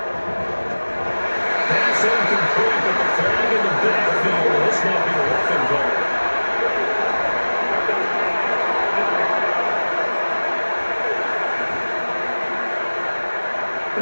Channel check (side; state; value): both; inverted; correlation -1.00